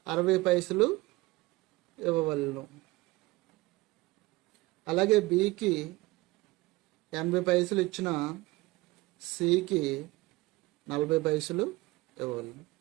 60 పైసలు ఇవ్వవలను. అలాగే బికి 80 పైసలు ఇచ్చిన సికి 40 పైసలు ఇవ్వవలను.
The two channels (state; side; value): quieter; left; 20.8 dB